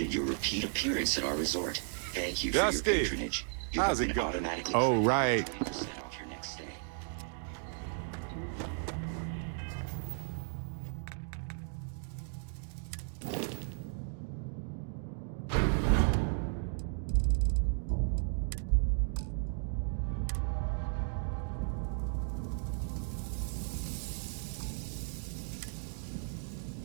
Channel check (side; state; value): left; silent; 55 dB below the other